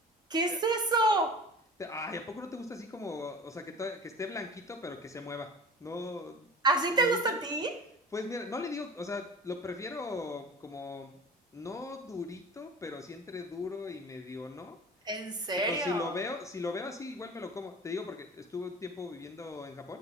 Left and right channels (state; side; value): normal; both; correlation 0.39